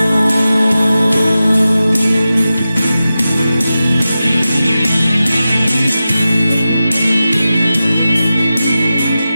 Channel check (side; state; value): both; inverted; correlation -0.93